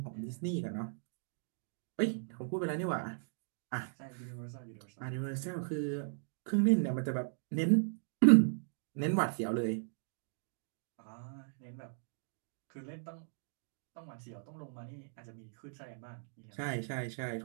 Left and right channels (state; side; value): silent; left; digital silence